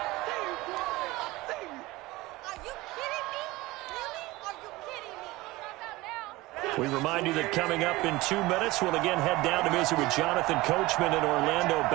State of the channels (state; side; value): quieter; left; 20.1 dB